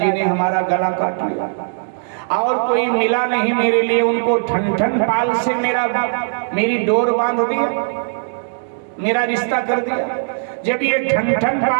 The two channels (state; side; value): silent; left; digital silence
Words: ने हमारा गला काट लिया और कोई मिला नहीं मेरे लिए, उनको ठन ठन पाल से मेरी डोर बांध दिया, मेरा रिश्ता कर दिया। जब ये ठन ठन